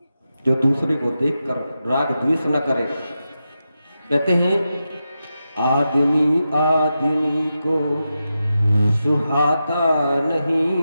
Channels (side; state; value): both; inverted; correlation -0.89